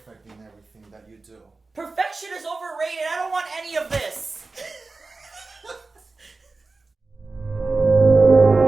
in everything that you do. Perfection is overrated. I don't want any of this.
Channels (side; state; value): left; quieter; 3.7 dB